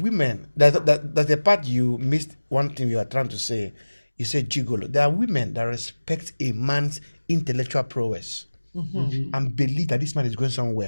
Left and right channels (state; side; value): inverted; both; correlation -1.00